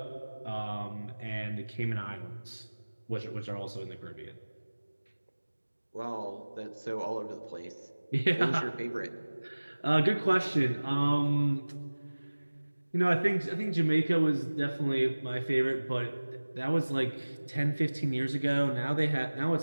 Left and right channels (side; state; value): both; inverted; correlation -1.00